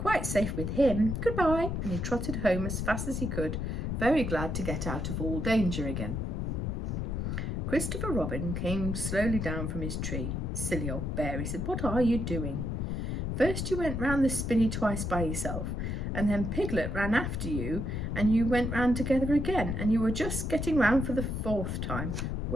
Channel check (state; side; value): noise; left; rumble, 2 dB below the sound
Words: safe with him. Goodbye. And he trotted home as fast as he could, very glad to get out of all danger again. Christopher Robin came slowly down from his tree. Silly old bear, he said, what are you doing? First you went round the spinney twice by yourself, and then Piglet ran after you, and you went round together again, and you were just getting round for the 4th time.